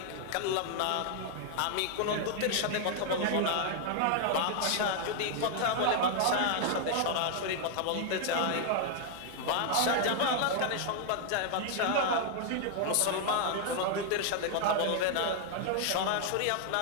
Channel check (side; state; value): both; different; correlation 0.00